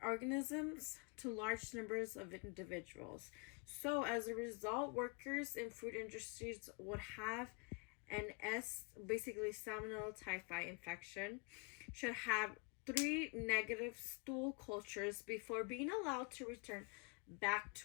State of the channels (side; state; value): right; quieter; 29.3 dB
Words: to large numbers of individuals. So, as a result, workers in food industries would have an basically Salmonella typhi infection, should have 3 negative stool cultures before being allowed to return back